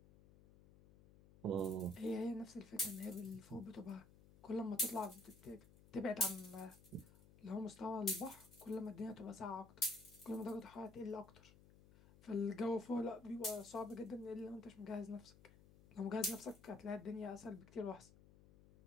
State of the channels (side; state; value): left; noise; hum, 22 dB below the sound